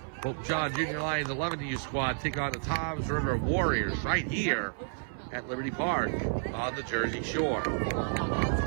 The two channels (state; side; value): silent; left; 57 dB below the other